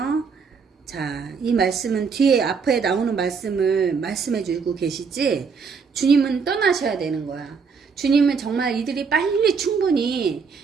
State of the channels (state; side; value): quieter; left; 5.6 dB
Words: 자, 이 말씀은 뒤에 앞에 나오는 말씀을 말씀해 주고 계시지, 주님은 떠나셔야 되는 거야. 주님은 정말 이들이 빨리 충분히